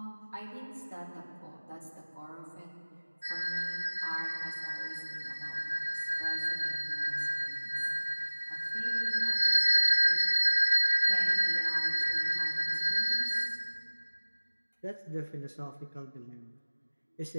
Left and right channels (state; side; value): inverted; both; correlation -1.00